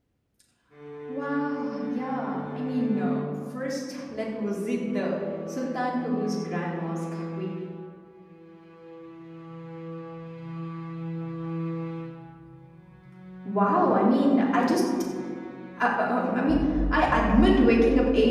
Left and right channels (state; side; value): identical; both; correlation 1.00